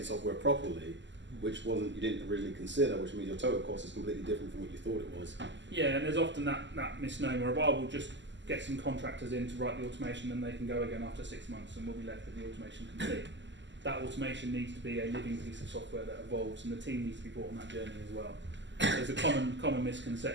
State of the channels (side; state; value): left; late; 0.53 ms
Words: software properly, which you didn't originally consider, which means your total cost is completely different from what you thought it was. Yeah, and there's often that misnomer of, we'll just get some contractors in to write the automation and they can go again after 6 months and we'll be left with the automation complete. That automation needs to be a living piece of software that evolves, and the team needs to be brought on that journey as well. There's a common